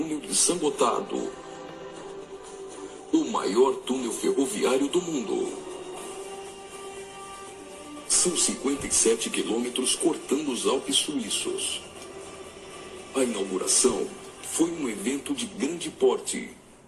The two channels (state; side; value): identical; both; correlation 1.00